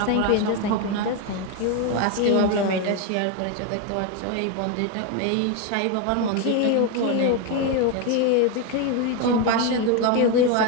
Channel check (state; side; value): different; both; correlation 0.02